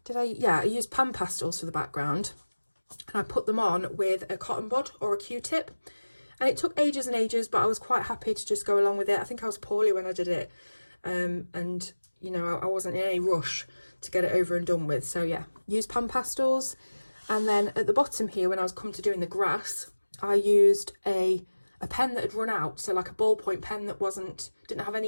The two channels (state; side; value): inverted; both; correlation -1.00